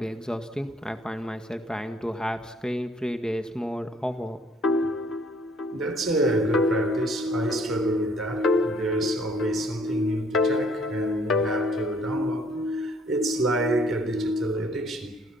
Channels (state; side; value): normal; both; correlation 0.61